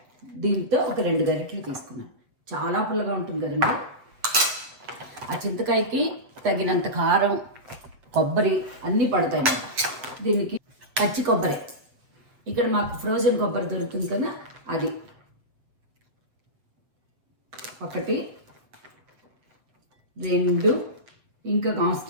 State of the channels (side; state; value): left; late; 7.8 ms